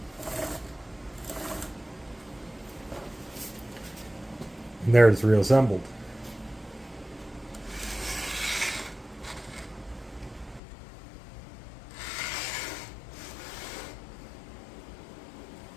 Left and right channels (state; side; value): drops out; right; at 10.6 s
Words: And there it's reassembled.